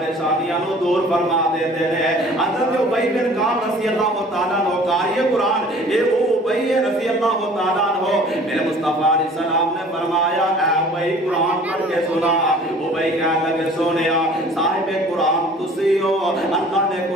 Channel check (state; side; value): normal; both; correlation 0.49